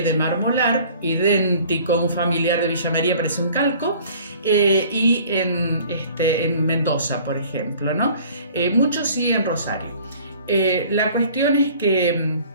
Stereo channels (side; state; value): both; inverted; correlation -0.50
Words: Molar, idéntico a un familiar de Villa María, parece un calco, y en Mendoza, por ejemplo, ¿no? Muchos sí en Rosario. La cuestión es que